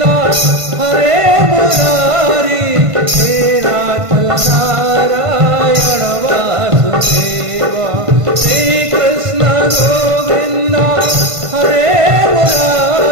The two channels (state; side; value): late; left; 1.5 ms